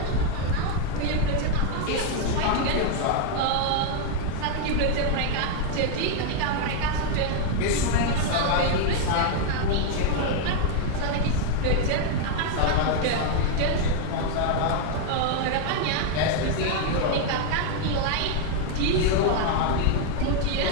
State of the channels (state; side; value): different; both; correlation 0.00